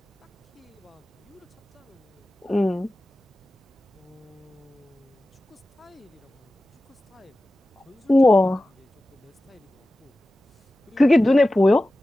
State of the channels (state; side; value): normal; both; correlation 0.95